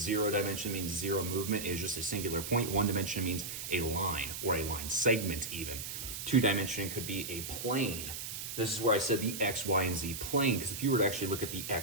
dimension means 0 movement is just a singular point. 1 dimension means a line or a line segment even. 2 dimension could be a plane. This is where I said the X, Y, and Z plane, because if you were to actually look at the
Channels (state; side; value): noise; right; hiss, 6 dB below the sound